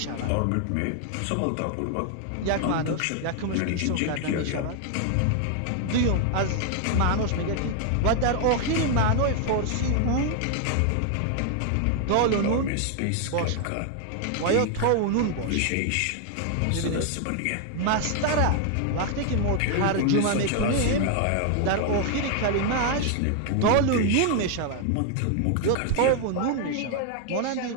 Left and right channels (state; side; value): different; both; correlation 0.00